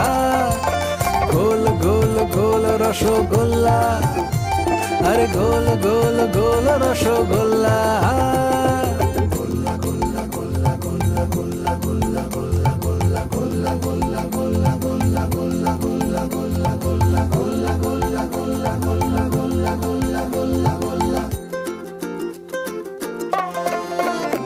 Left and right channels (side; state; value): both; identical; correlation 1.00